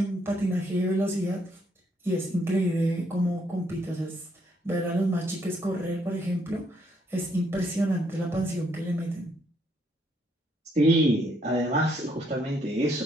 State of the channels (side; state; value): both; normal; correlation 0.72